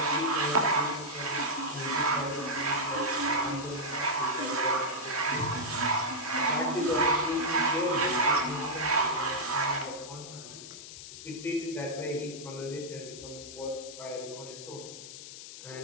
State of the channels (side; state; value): left; noise; hiss, 12 dB below the sound